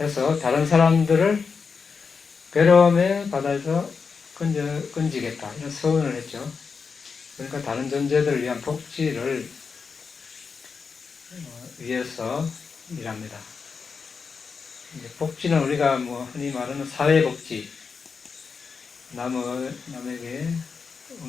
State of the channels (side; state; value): right; quieter; 5.4 dB